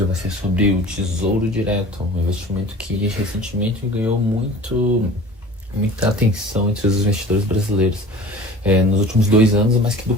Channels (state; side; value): normal; both; correlation 0.42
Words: vai ser sobre o Tesouro Direto, um investimento que recentemente ganhou muita atenção entre os investidores brasileiros. Nos últimos 2 anos, mas que